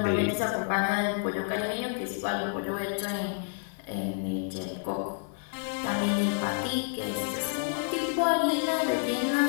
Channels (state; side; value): silent; right; 55 dB below the other